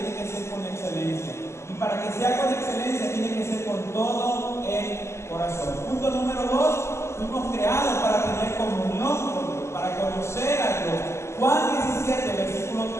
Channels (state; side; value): late; right; 0.13 ms